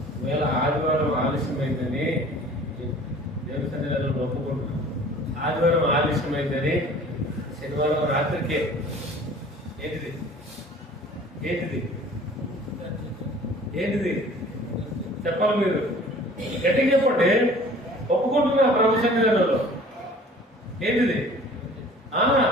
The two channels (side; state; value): both; normal; correlation 0.48